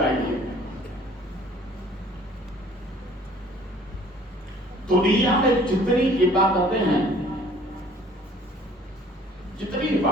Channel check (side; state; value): both; normal; correlation 0.54